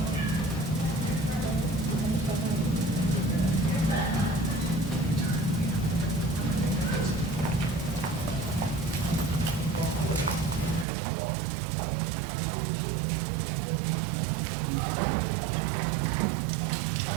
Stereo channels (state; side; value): drops out; left; at 10.9 s